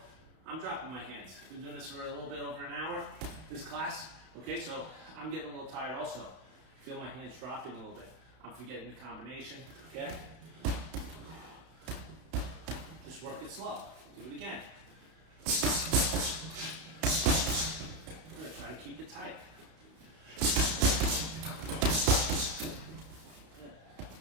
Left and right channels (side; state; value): left; late; 32 ms